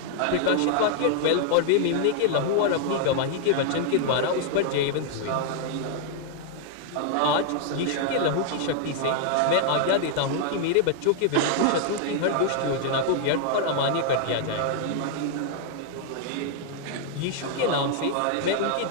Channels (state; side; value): different; both; correlation -0.01